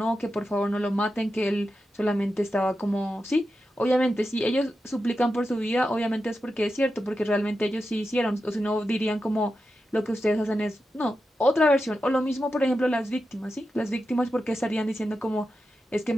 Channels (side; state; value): both; normal; correlation 0.90